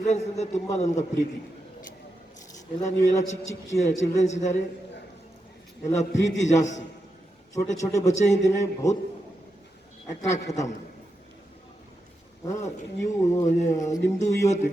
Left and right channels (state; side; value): normal; both; correlation 0.87